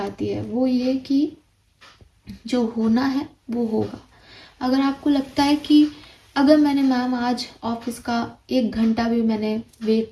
है, वो ये कि जो होना है वो होगा। अगर आपको लगता है कि अगर मैंने मैम आज ऑफिस का 1 घंटा भी मैंने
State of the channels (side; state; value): both; identical; correlation 1.00